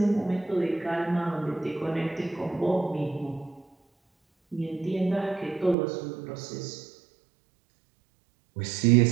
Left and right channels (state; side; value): drops out; left; at 5.8 s